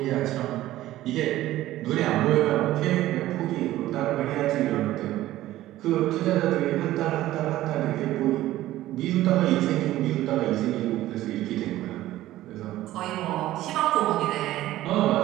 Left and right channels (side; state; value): left; quieter; 15.1 dB